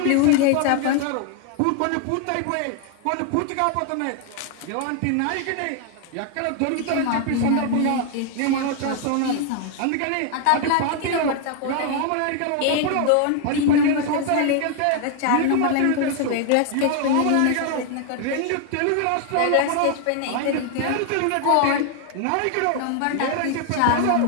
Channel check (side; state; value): both; different; correlation 0.00